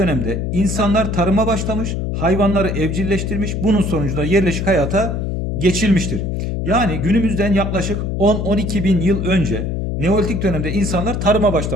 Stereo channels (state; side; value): noise; left; hum, 2 dB below the sound